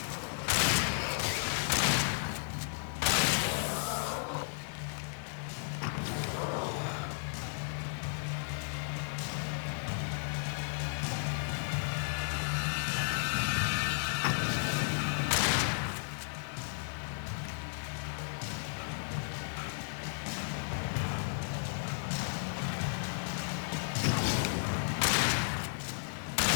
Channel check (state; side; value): silent; right; digital silence